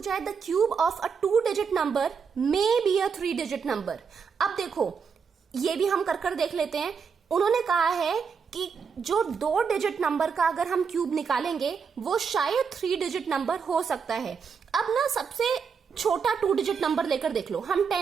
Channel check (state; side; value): quieter; left; 6.1 dB